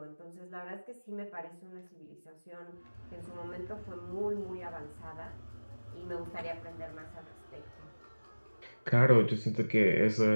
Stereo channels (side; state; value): both; inverted; correlation -1.00